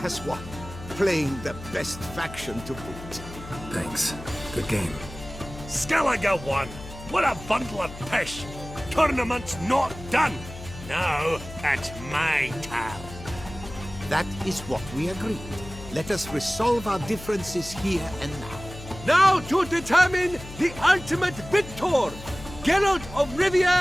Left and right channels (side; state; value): left; noise; hum, 14 dB below the sound